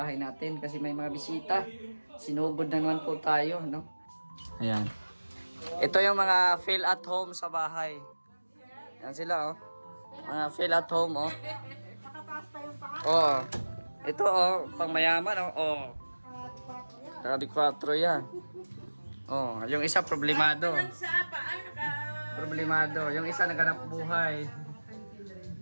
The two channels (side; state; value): both; inverted; correlation -1.00